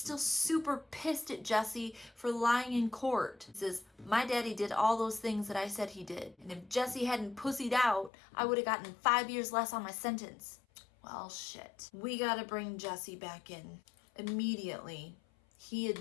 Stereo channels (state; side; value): drops out; right; at 8.1 s